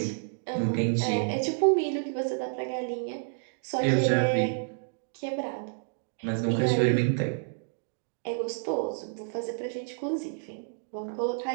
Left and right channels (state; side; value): silent; left; digital silence